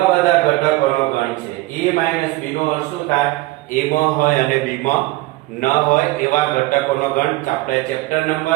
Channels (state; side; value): quieter; left; 19.4 dB